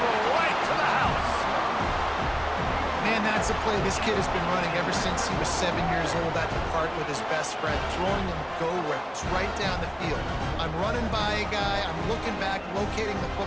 right to the house. Man, that's a play this kid has been running ever since he was 7 years old at the park with his best friend, throwing him go routes right down the field. I'm running by a guy, I'm looking back, locating the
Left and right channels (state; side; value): identical; both; correlation 1.00